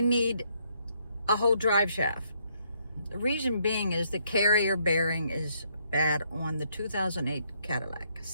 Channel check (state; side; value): inverted; both; correlation -0.72